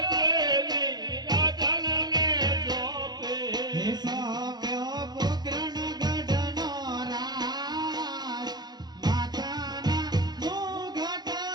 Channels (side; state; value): left; late; 0.20 ms